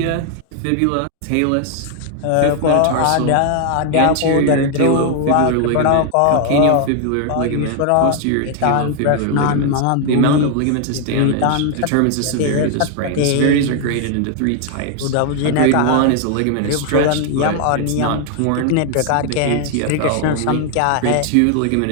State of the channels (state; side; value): different; both; correlation 0.00